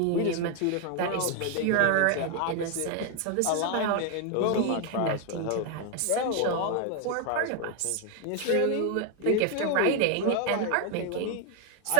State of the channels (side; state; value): both; different; correlation 0.01